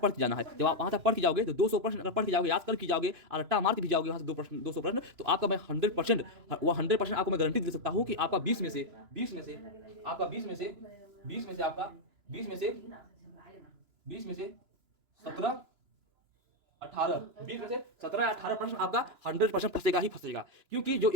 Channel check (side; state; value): left; late; 2.9 ms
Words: के जाना है। जब आप वहां तक पढ़ के जाओगे तो 200 प्रश्न अगर पढ़ के जाओगे, याद कर के जाओगे और रट्टा मार के भी जाओगे वहां से 200 प्रश्न, तो आपका मैं 100% आपको मैं गारंटी दे सकता हूं कि आपका 20 में से आपका 20 में से 17 18 20 में से 17-18 प्रश्न आपका 100% फंसेगा ही फंसेगा। क्योंकि जो